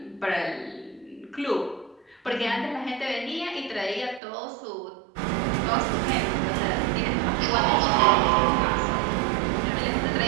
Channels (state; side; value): drops out; left; at 4.2 s